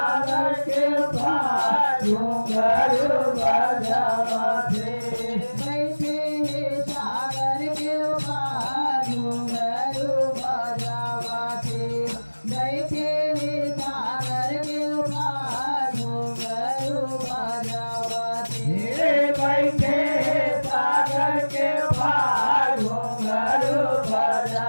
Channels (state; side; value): inverted; both; correlation -1.00